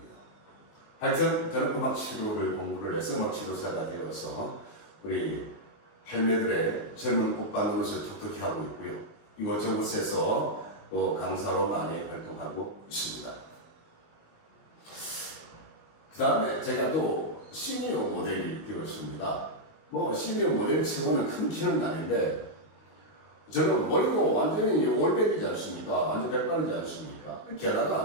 하여튼 저는 음악 치료를 공부를 해서 음악 치료사가 되어서 우리 할매들의 젊은 오빠 노릇을 톡톡히 하고 있고요. 이곳저곳에서 또 강사로 많이 활동하고 있습니다. 그 다음에 제가 또 시니어 모델이 되었습니다. 뭐 시니어 모델 치고는 큰 키는 아닌데 저는 머리도 완전히 올백이지 않습니까? 완전 백발이지 않습니까?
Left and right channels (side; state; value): right; late; 19 ms